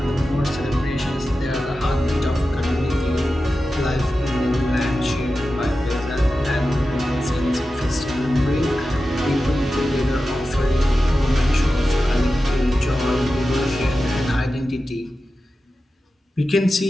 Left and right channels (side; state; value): both; normal; correlation 0.93